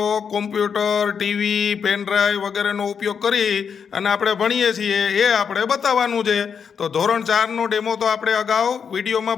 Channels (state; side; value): quieter; right; 6.8 dB